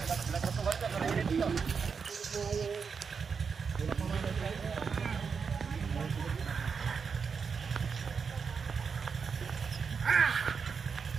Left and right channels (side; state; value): left; quieter; 5.8 dB